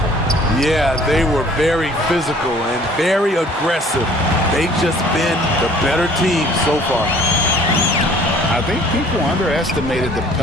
Yeah, they were very physical and very aggressive. They've just been the better team so far. I think people underestimated the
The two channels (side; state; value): both; normal; correlation 0.54